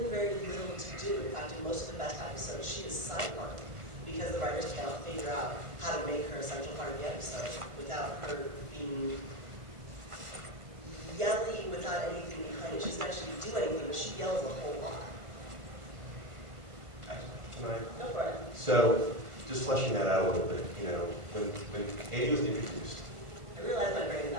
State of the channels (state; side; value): late; left; 1.4 ms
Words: very little to do. In fact, in most of the best episodes, she is sidelined because the writers cannot figure out how to make her a central part of the episode without her being yelly without anything behind it. She doesn't actually do anything, but she yells a whole lot. Can I? Go for it. So, just fleshing that out a little bit, you know, when Amy was introduced. I realized my brain is